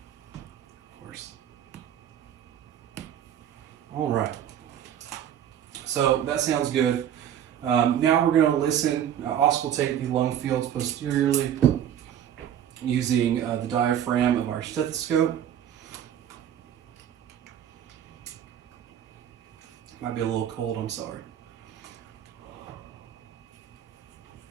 All right. So that sounds good. Now we're going to listen, auscultate the lung fields posteriorly using the diaphragm of our stethoscope. Might be a little cold, I'm sorry.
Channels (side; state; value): left; quieter; 10.1 dB